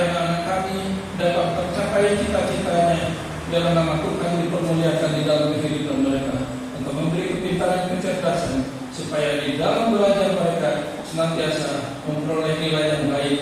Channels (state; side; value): identical; both; correlation 1.00